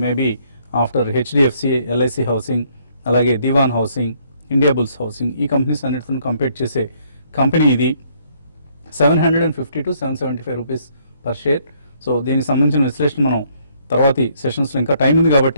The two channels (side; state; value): both; inverted; correlation -0.67